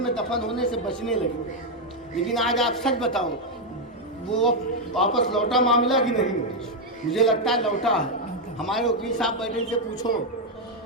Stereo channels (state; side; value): normal; both; correlation 0.02